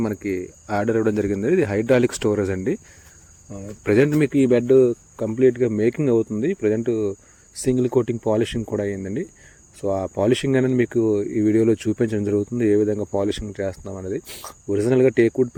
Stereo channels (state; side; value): identical; both; correlation 1.00